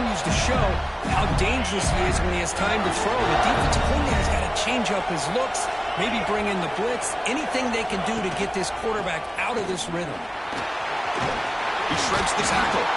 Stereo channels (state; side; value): identical; both; correlation 1.00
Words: to show how dangerous he is when he has time to throw. The defensive coordinator's got to change up his looks, maybe bring in the blitz, anything they can do to get this quarterback out of this rhythm. He shreds the tackle.